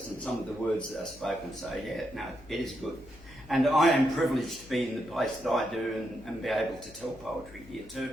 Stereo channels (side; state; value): left; noise; hum, 21 dB below the sound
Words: and some of the words that are spoken, so yeah, no, it is good. And I am privileged to be in the place that I do and be able to tell poetry here